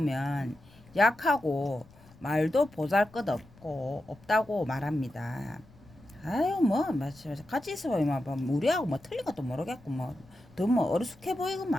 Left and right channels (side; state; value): left; noise; rumble, 25 dB below the sound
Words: 약하고 말도 보잘것없고 없다고 말합니다. 아유 뭐 같이 있어 보면 뭐 우리하고 뭐 틀린 것도 모르겠고 뭐 더 뭐 어리숙해